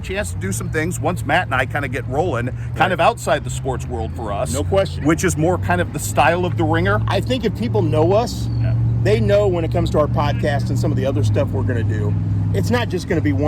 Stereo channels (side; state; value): both; identical; correlation 1.00